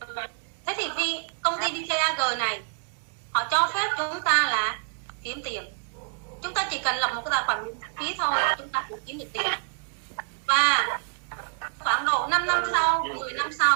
Thế thì vì công ty VTAG này họ cho phép chúng ta là kiếm tiền. Chúng ta chỉ cần lập một cái tài khoản miễn phí thôi chúng ta cũng kiếm được tiền. Và khoảng độ 5 năm sau, 10 năm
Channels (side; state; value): left; silent; 60 dB below the other